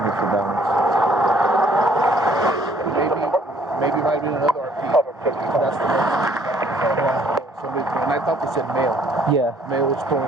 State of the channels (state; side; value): normal; both; correlation 0.62